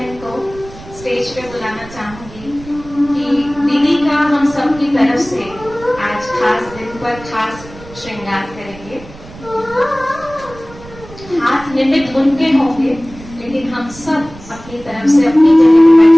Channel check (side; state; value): right; noise; rumble, 18 dB below the sound